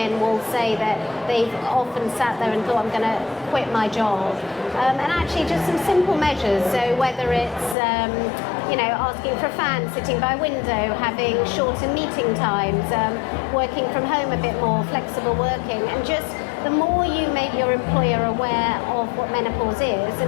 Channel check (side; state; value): right; drops out; at 7.8 s